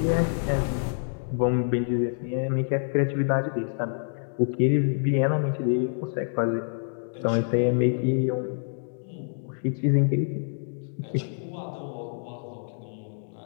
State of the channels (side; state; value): right; silent; digital silence